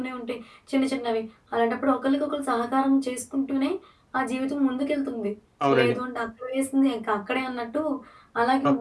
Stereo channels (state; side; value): identical; both; correlation 1.00